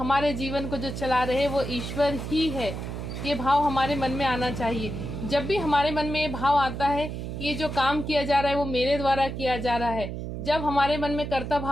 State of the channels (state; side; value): noise; right; hum, 6 dB below the sound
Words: जीवन को जो चला रहे वो ईश्वर ही है। ये भाव हमारे मन में आना चाहिए। जब भी हमारे मन में ये भाव आता है कि ये जो काम किया जा रहा है वो मेरे द्वारा किया जा रहा है, जब हमारे मन में कर्ता